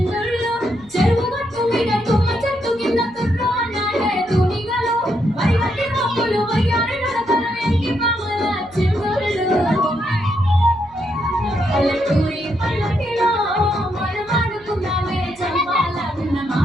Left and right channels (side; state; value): right; noise; hum, 28 dB below the sound